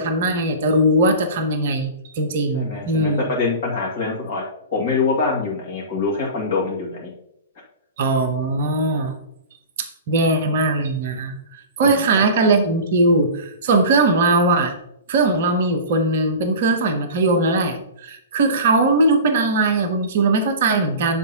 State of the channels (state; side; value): inverted; both; correlation -0.34